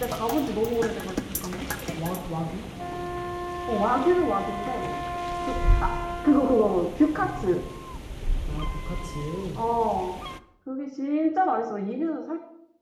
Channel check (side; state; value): both; identical; correlation 1.00